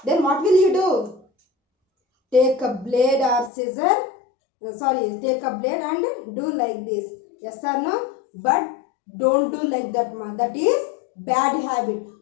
Then what will you do? Take a blade or scissor. Take a blade and do like this. Yes or no? But don't do like that, man. That is bad habit.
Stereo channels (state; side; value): drops out; right; at 3.5 s